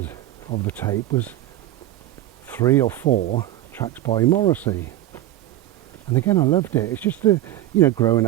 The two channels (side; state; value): left; quieter; 14.1 dB